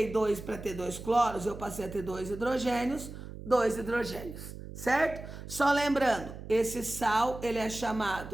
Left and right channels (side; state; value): right; noise; hum, 12 dB below the sound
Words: 2 para ter 2 cloros, eu passei a ter 2 hidrogênios, 2 hidrogênios, certo? Só lembrando, esse sal, ele é